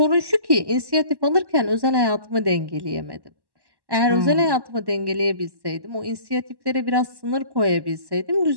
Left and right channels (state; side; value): late; left; 1.1 ms